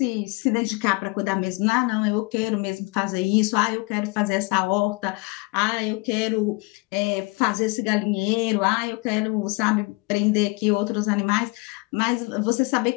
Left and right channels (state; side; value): quieter; right; 26.0 dB